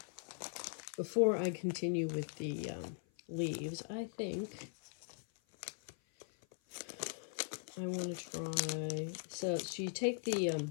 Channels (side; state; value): right; silent; 51 dB below the other